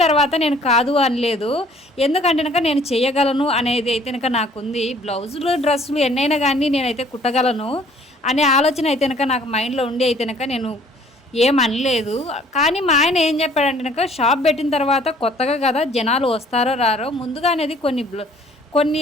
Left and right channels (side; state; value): both; normal; correlation 0.57